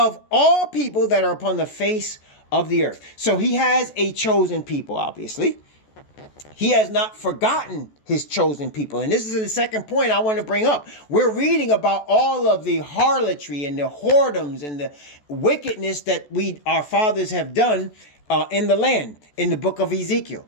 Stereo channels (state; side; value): late; right; 14 ms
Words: all people that are upon the face of the earth. So he has a chosen people, obviously. He has not forgotten his chosen people. And this is the second point I want to bring up. We're reading about all of the harlotry and the whoredoms and the wickedness that our fathers have done in the land in the book of Ezekiel.